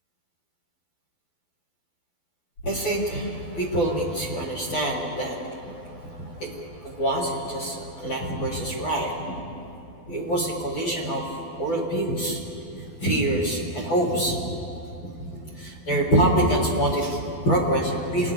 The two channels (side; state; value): right; late; 12 ms